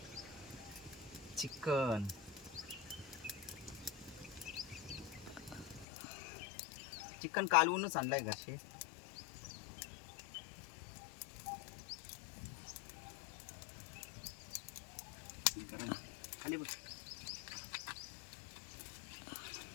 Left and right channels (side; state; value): right; drops out; at 5.9 s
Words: चिकन. चिकन कालवूनच आणलंय घरचे. गरम खाली बघ.